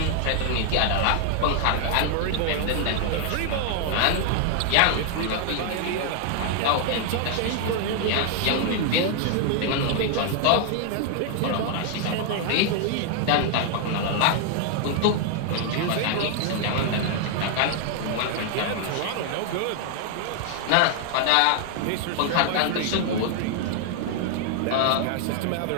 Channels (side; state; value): both; different; correlation 0.00